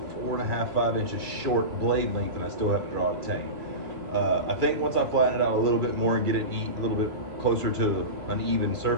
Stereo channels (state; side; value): late; left; 2.3 ms